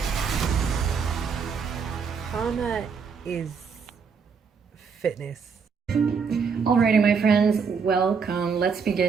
Is fitness. Alrighty, my friends, welcome. Let's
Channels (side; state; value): left; quieter; 5.9 dB